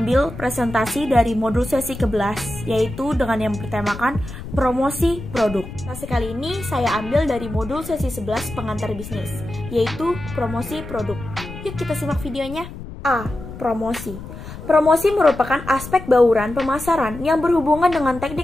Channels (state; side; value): noise; left; rumble, 12 dB below the sound